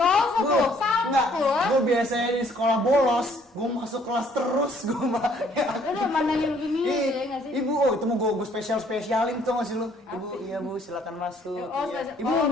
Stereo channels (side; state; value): both; normal; correlation 0.62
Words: tuh, Enggak, salvo. gue biasanya di sekolah bolos, gue masuk kelas terus, gue mah. Udah mandangin begini ya nggak sih? Ibu, oh itu mau gue spesialin tuh masih lu. Ibu, iya bu, silakan masuk. Oh, Iya. ibu mau